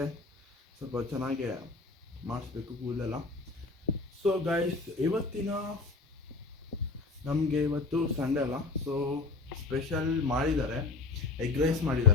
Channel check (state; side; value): quieter; right; 3.6 dB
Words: ಸ್ವಲ್ಪ ಚೆನ್ನಾಗಿ ಮಾಡಿಸ್ಬೇಕು ಕೂದಲೆಲ್ಲ. ಸೊ ಗಾಯ್ಸ್, ನಮಗೆ ಇವತ್ತು ಸಂಡೇ ಅಲ್ಲ, ಸೊ ಸ್ಪೆಷಲ್ ಮಾಡಿದ್ದಾರೆ, ಎಗ್ ರೈಸ್